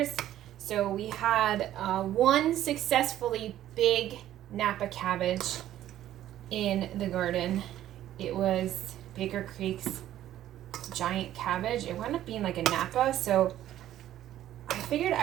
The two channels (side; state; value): left; quieter; 12.6 dB